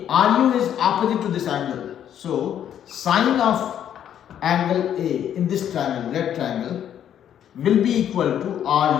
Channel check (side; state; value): right; quieter; 9.9 dB